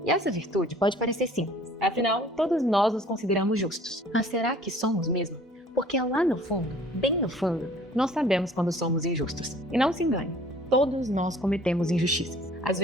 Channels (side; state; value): both; normal; correlation 0.52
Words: E essa virtude pode parecer simples, afinal, todos nós nos consideramos justos. Mas será que somos mesmo? Porque lá no fundo, bem no fundo, nós sabemos quando somos injustos. E não se engane, todos nós cometemos injustiças. Às